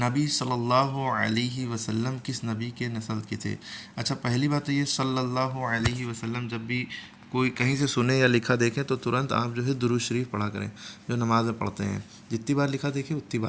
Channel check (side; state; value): both; identical; correlation 1.00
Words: सल्लल्लाहु अलैहि वसल्लम किस नबी के नस्ल के थे? अच्छा, पहली बात तो ये सल्लल्लाहु अलैहि वसल्लम जब भी कोई कहीं से सुने या लिखा देखें तो तुरंत आप जो है दुरूद शरीफ पढ़ा करें, जो नमाज में पढ़ते हैं। जितनी बार लिखा देखें उतनी